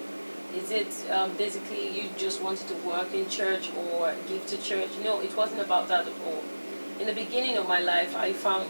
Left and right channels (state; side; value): inverted; both; correlation -1.00